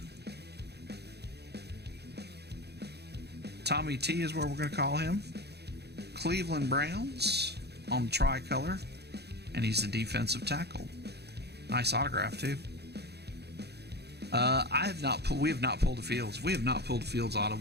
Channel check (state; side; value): late; left; 0.48 ms